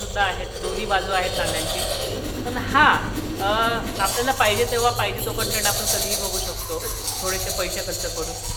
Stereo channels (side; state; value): both; identical; correlation 1.00